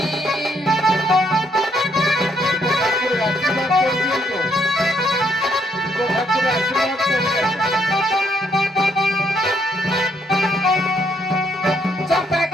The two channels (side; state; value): both; normal; correlation 0.72